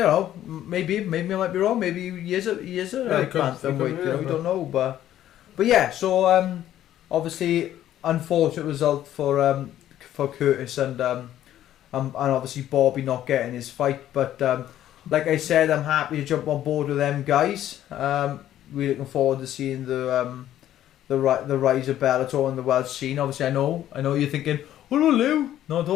maybe I might be wrong. Maybe he is a bantamweight. You know, we don't know, but yeah. So obviously, unfortunate result for Curtis, and obviously Bobby not getting his fight, but. Like I said, I'm happy to jump on board with them guys. Really looking forward to seeing the rise of Bellator and the world scene. Obviously, I know you're thinking, "Oh no, Lou." No,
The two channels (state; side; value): quieter; right; 12.2 dB